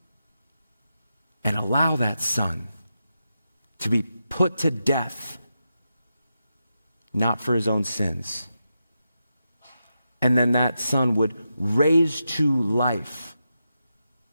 and allow that Son to be put to death, not for his own sins. And then that Son would raise to life.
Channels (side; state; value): both; inverted; correlation -0.88